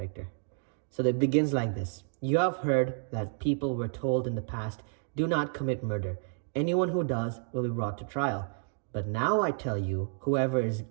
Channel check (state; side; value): silent; left; 57 dB below the other